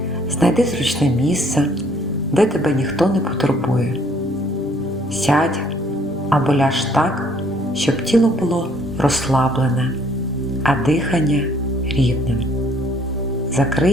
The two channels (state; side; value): normal; both; correlation 0.62